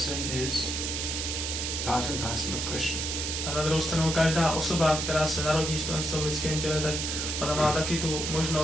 is part and parcel of Krishna. A na druhou stranu každá osoba, která se narodí v tom lidském těle, tak ona má taky tu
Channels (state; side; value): noise; right; hiss, 2 dB below the sound